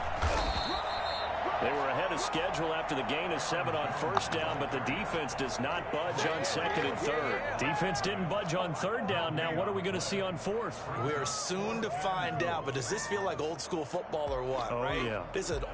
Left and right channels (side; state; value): both; identical; correlation 1.00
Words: They were ahead of schedule after the gain of 7 on 1st down, but the defense does not budge on 2nd and 3rd. Defense didn't budge on 3rd down. Now what are we going to see on 4th? We are soon to find out, but does this feel like old school football or what, Oh, right? yeah. This is an